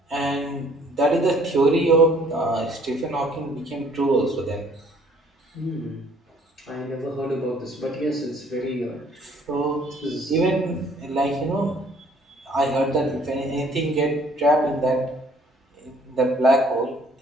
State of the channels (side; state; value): both; normal; correlation 0.60